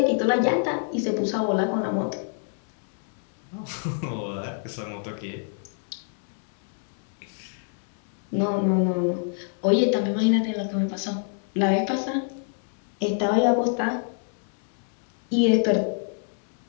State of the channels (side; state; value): right; silent; 60 dB below the other